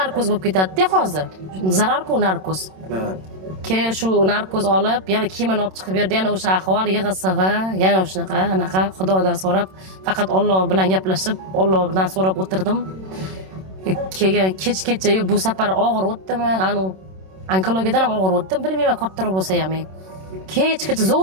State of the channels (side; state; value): left; late; 27 ms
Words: bo'lib ketadi-da hozir. Zarar-ku narkoz. Keyin shu narkoz olib, yana kiyimini olib chiqib berdi, yana o'sha ahvol yig'i-sig'i, yana o'shanaqa, anaqa Xudodan so'rab, faqat Alloh bilan gaplashib, Alloh bilan so'rab o'tirdim. Keyin kechgacha bu safar og'ir o'tdimi? Anu onkologiyadan ham og'ir o'tdim, bilmayman kattaroq bo'lsa ham. Kechgacha